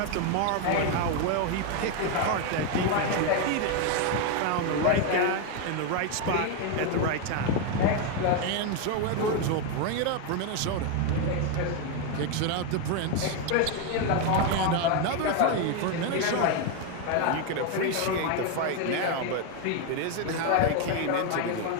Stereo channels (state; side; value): different; both; correlation 0.01